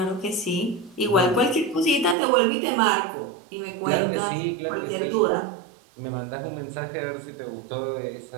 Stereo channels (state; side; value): drops out; left; at 2.1 s